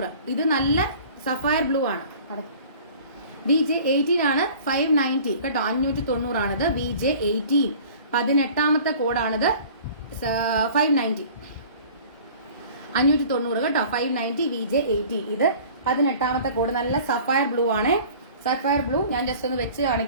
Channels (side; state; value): both; inverted; correlation -0.47